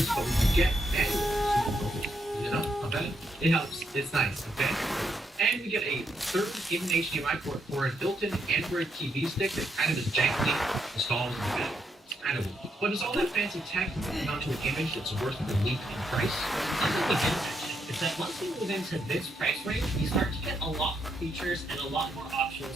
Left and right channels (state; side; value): normal; both; correlation 0.78